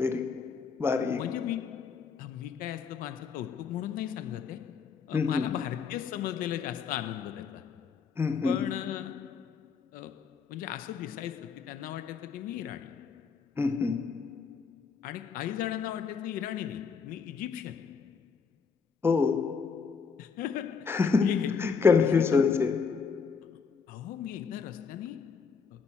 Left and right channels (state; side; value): quieter; right; 5.7 dB